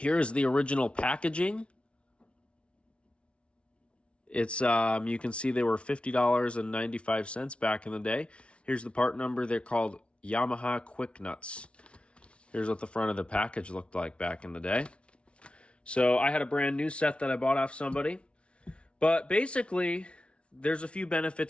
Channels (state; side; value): late; right; 0.060 ms